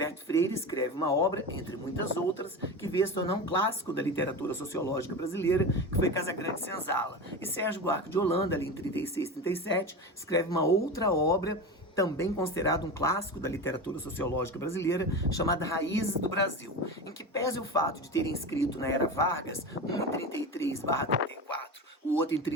Freire escreve uma obra, entre muitas outras, que veio a se tornar um clássico da literatura sociológica brasileira, que foi Casagrande Senzala. E Sérgio Buarque de Holanda, ali em 36, 37, escreve uma outra obra também considerado um clássico da literatura sociológica brasileira, chamada Raízes do Brasil, em que pese o fato de terem escrito na era Vargas, um em 33/34, o outro em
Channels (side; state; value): both; normal; correlation 0.25